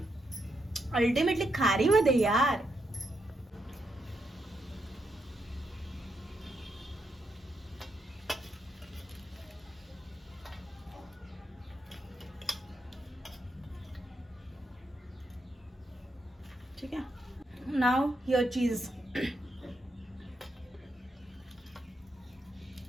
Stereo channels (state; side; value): normal; both; correlation 0.81